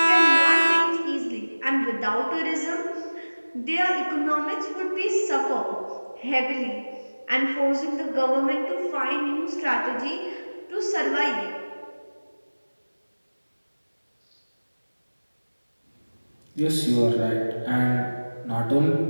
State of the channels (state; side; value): inverted; both; correlation -1.00